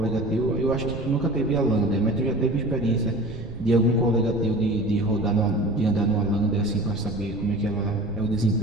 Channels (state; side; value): noise; right; rumble, 12 dB below the sound